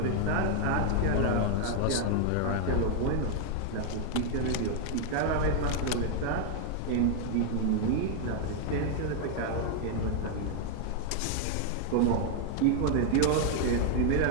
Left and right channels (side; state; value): both; different; correlation 0.00